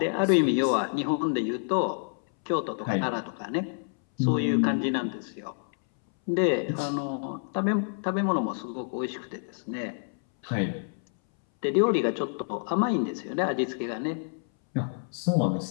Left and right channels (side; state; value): right; silent; 59 dB below the other